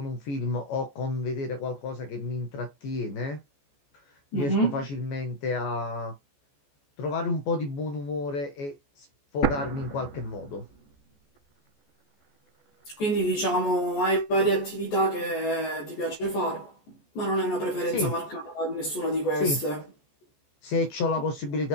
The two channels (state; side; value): late; right; 14 ms